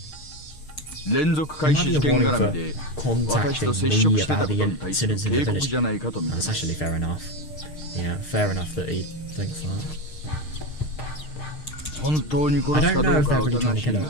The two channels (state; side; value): late; right; 6.5 ms